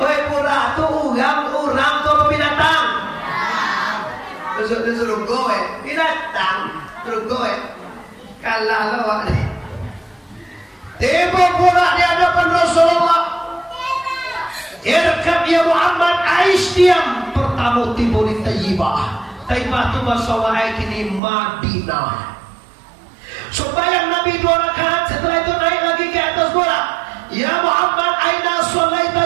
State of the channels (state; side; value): drops out; left; at 21.2 s